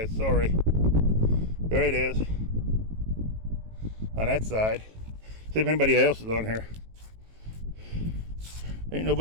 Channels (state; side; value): late; left; 18 ms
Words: sorry. There it is, on that side. See if anybody else is on here. Ain't